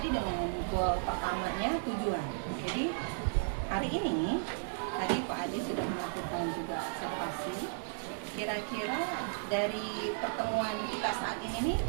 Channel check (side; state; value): left; silent; digital silence